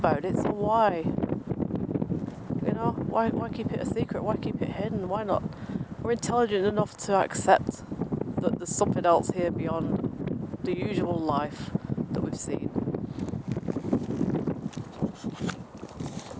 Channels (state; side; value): identical; both; correlation 1.00